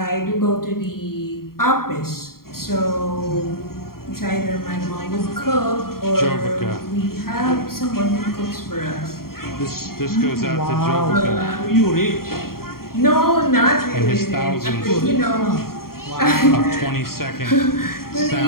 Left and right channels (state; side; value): late; right; 0.93 ms